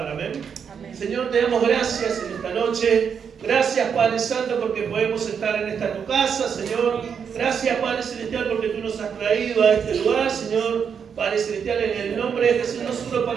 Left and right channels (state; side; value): quieter; left; 7.0 dB